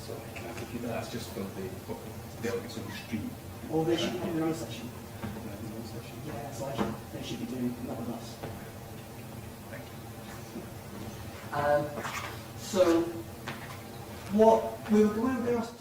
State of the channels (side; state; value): both; identical; correlation 1.00